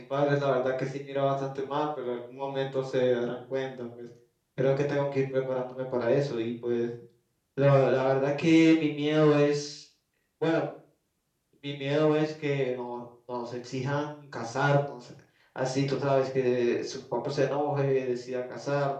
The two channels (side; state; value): both; identical; correlation 1.00